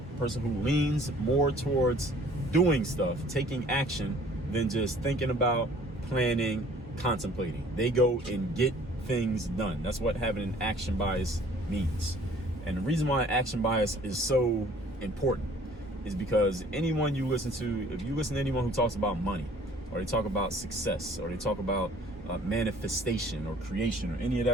a person who leans more towards doing stuff, taking action, than just thinking about, planning, contemplating. They go and get things done. That's what having an action bias means. And the reason why action bias is so important is because anyone you listen to, if you listen to anyone who talks about money, or they talk about success, or they talk about manifestation or creation or any of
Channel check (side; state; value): both; normal; correlation 0.54